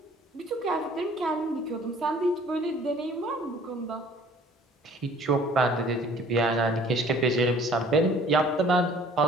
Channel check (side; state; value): both; normal; correlation 0.53